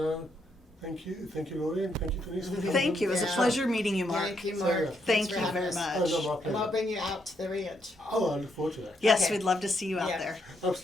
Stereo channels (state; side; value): normal; both; correlation 0.77